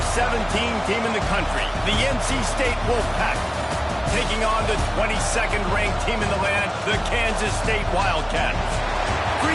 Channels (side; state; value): both; identical; correlation 1.00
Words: 17 team in the country, the NC State Wolfpack, taking on the 22nd ranked team in the land, the Kansas State Wildcats.